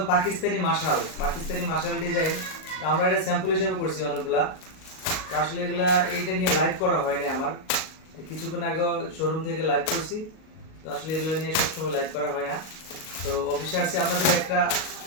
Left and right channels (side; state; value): right; late; 38 ms